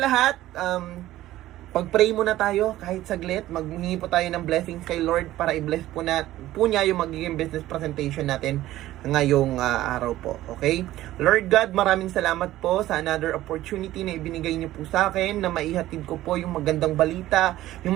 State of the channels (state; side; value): quieter; left; 15.0 dB